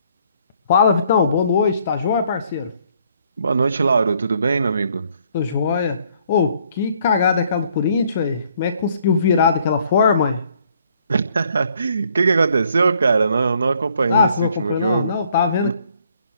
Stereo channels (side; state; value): both; inverted; correlation -0.65